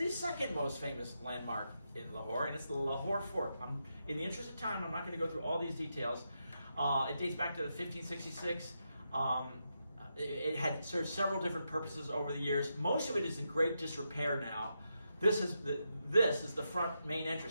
second most famous landmark in Lahore, and it's the Lahore Fort. In the interest of time, I'm not going to go through all these details. It dates back to 1566. It had served several different purposes over the years. Most of it is in great disrepair now. This is the front main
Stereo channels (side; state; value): both; inverted; correlation -0.84